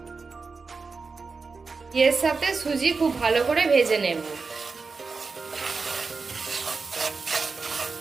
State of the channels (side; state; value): left; quieter; 4.5 dB